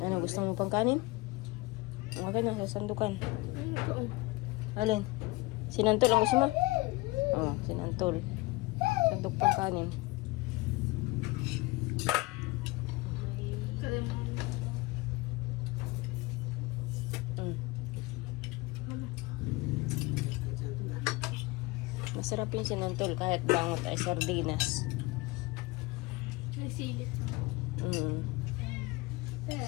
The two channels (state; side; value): quieter; right; 22.3 dB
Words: Ano, gusto mo pang kanin? Okay na, sa sandukan. Alin? Sinantol ang gusto mo? Oo, sinantol. Sandok pang kanin. Masarap yung sinantol kahit bangot ay sardinas.